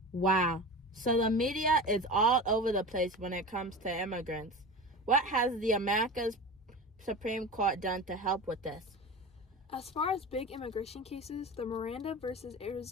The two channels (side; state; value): both; normal; correlation 0.30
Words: Wow. So the media is all over the place when it comes to immigrants. What has the America's Supreme Court done to help with this? As far as big immigration cases, the Miranda versus